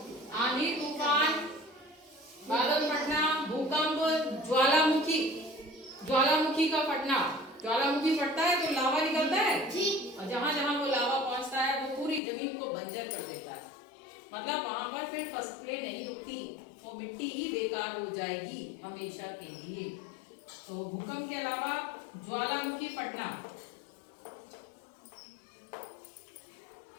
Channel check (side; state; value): right; drops out; at 12.2 s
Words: आंधी, तूफान, बादल फटना, भूकंप, ज्वालामुखी। ज्वालामुखी का फटना, ज्वालामुखी फटता है तो लावा निकलता है और जहां जहां वो लावा पहुंचता है वो पूरी जमीन को बंजर कर देता है। मतलब वहां पर फिर फसलें नहीं उगती, वो मिट्टी ही बेकार हो जाएगी हमेशा के लिए। तो भूकंप के अलावा ज्वालामुखी फटना,